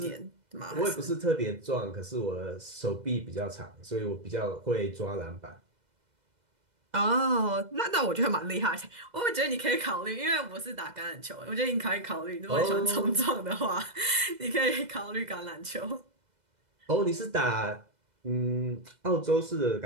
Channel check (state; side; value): late; left; 2.0 ms